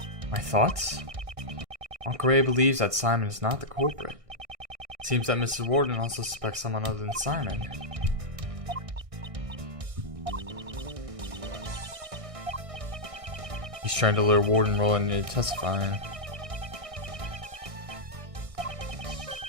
My thoughts? Uncle Ray believes that Simon is not the culprit. It seems that Mrs. Warden also suspects someone other than Simon. He's trying to lure Warden Roland into testifying.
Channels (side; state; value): left; late; 1.6 ms